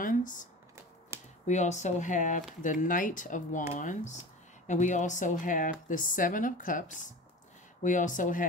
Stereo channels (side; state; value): both; normal; correlation 0.34